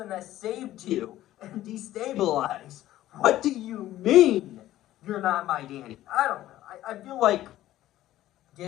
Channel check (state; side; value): quieter; right; 14.3 dB